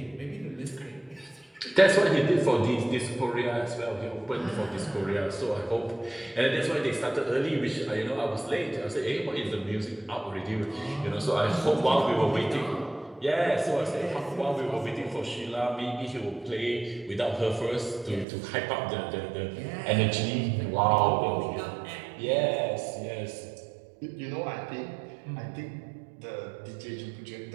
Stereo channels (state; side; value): drops out; left; at 18.2 s